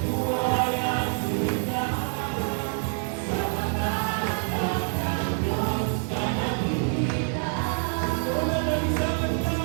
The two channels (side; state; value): left; silent; 55 dB below the other